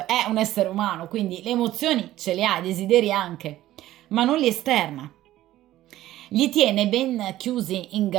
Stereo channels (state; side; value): quieter; left; 14.6 dB